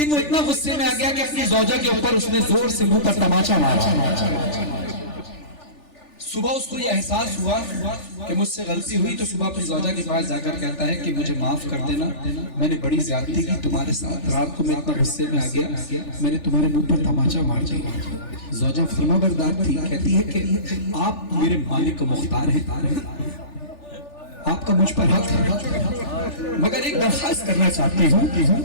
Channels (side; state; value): right; late; 3.4 ms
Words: वो इतना गुस्से में आ गया कि अपनी ज़ौजा के ऊपर उसने जोर से मुंह पर तमाचा मारा। सुबह उसको ये एहसास हुआ कि मुझसे गलती हुई, तो सुबह अपनी ज़ौजा के पास जाकर कहता है कि मुझे माफ कर देना, मैंने बड़ी ज्यादती की तुम्हारे साथ, रात को मैं इतना गुस्से में आ गया, मैंने तुम्हारे मुंह पर तमाचा मार दिया। ज़ौजा फरमाबरदार थी, कहती है कि आप मेरे मालिक को मुख्तार हैं, आपका मुझ पर हक है, मगर एक दरखास्त करना चाहती हूँ।